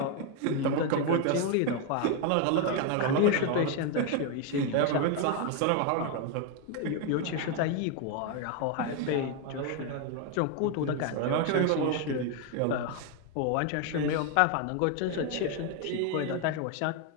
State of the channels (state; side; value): different; both; correlation 0.01